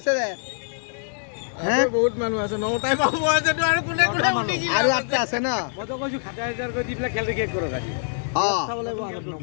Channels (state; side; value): silent; right; 62 dB below the other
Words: দে বহুত মানুহ আছে 9টাই পাব আৰু 8টা আছে ন মইতো কৈছো 7000 কৰি দি পেলাই খেলটো শেষ কৰক আজি